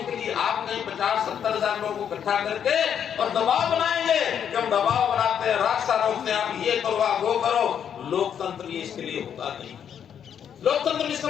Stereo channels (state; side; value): quieter; right; 8.5 dB